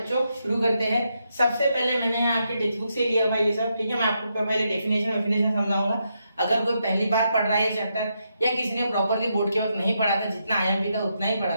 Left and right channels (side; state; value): both; inverted; correlation -0.81